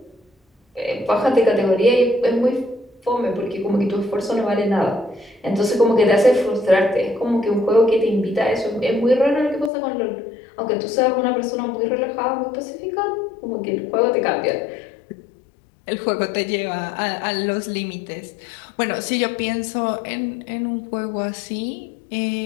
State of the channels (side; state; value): right; drops out; at 9.7 s